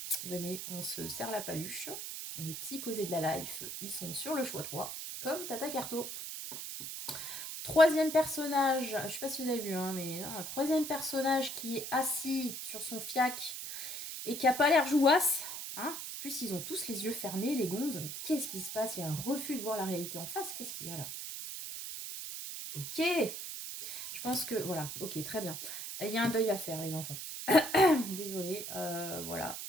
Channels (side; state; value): right; noise; hiss, 6 dB below the sound